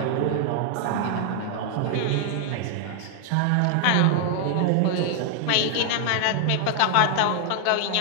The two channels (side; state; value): both; different; correlation 0.00